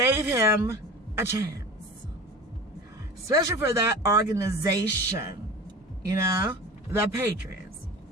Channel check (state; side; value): normal; both; correlation 0.35